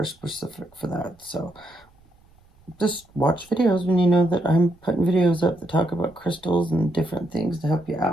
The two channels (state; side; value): noise; right; rumble, 30 dB below the sound